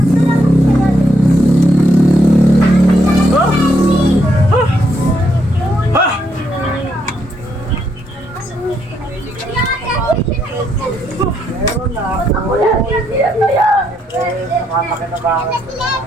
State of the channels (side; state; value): both; normal; correlation 0.76